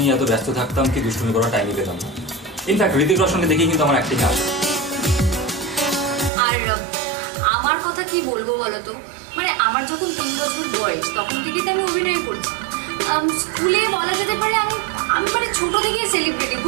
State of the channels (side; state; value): left; drops out; at 6.3 s